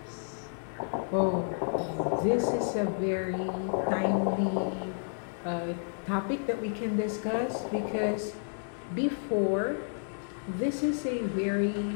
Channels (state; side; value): silent; right; 57 dB below the other